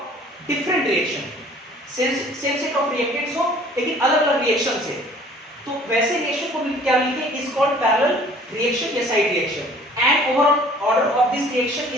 different reaction, same set of reactants हो लेकिन अलग अलग रिएक्शन से, तो वैसे रिएक्शन को क्या लिखे, इज कॉल्ड पैरेलल रिएक्शन या side reaction. And overall order of this reaction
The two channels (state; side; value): normal; both; correlation 0.52